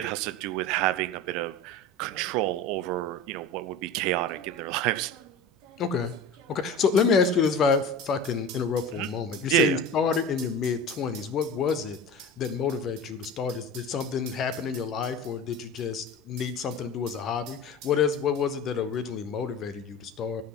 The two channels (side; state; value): both; normal; correlation 0.33